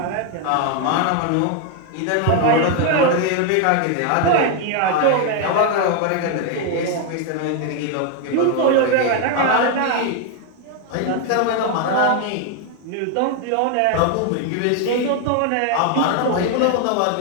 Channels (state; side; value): different; both; correlation 0.01